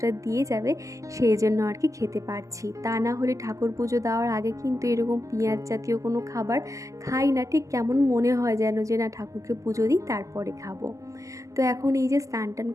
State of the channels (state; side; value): late; left; 0.16 ms